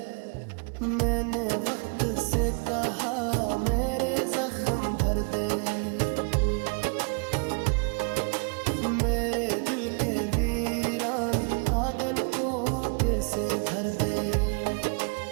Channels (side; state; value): left; quieter; 38.1 dB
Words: मैंने वक्त से कहा मेरे जख्म भर दे, मेरे दिल के वीरान आंगन को फिर से भर दे।